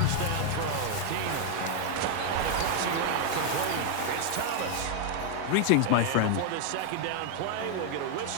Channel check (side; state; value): both; different; correlation 0.00